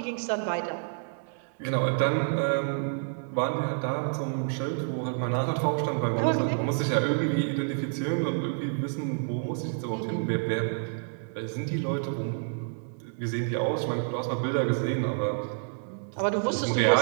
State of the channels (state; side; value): silent; left; digital silence